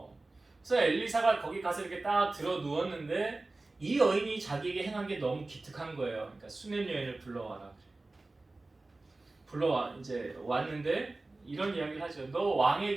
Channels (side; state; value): left; quieter; 3.1 dB